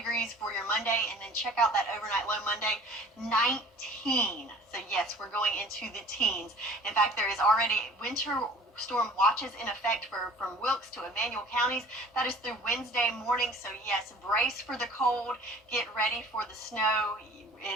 for your Monday, and then check out that overnight low Monday, 19. So yes, we're going into the teens. In fact, there is already winter storm watches in effect from Wilkes to Emmanuel counties. That is through Wednesday morning. So yes, brace for the cold, get ready for the snow.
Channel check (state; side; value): normal; both; correlation 0.48